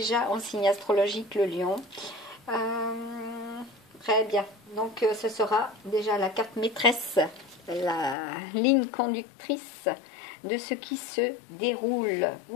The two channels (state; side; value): drops out; right; at 8.2 s